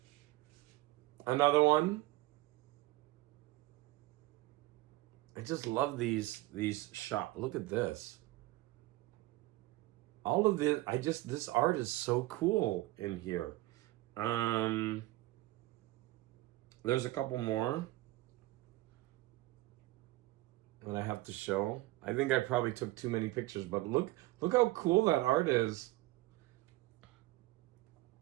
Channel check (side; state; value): left; quieter; 18.3 dB